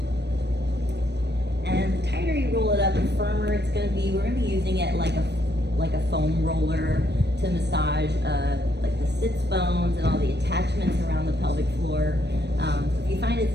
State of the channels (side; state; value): left; late; 0.49 ms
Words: And the tighter you roll it up, the firmer it's going to be. We're going to be using it like a foam roller to massage like the sits bones and all the attachments around the pelvic floor. So if you find